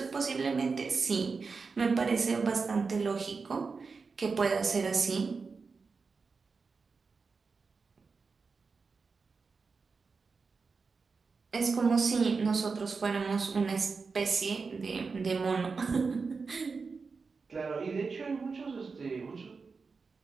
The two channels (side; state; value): left; quieter; 4.7 dB